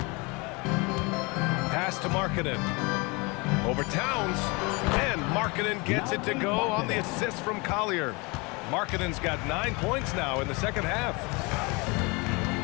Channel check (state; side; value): quieter; right; 27.5 dB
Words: Pass to Markkanen. Over Towns. And Markkanen gets it to go on the assist from Collier. Markkanen's got 9 points now in the second half.